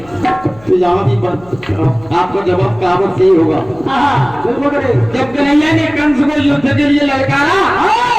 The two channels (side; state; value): left; noise; hum, 24 dB below the sound